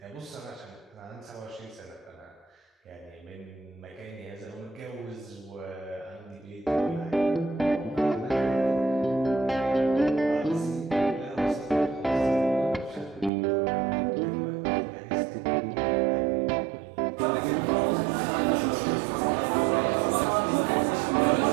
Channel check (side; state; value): left; drops out; at 13.3 s